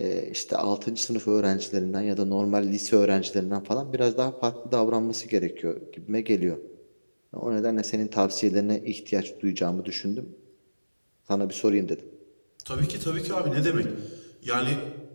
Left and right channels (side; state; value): both; inverted; correlation -1.00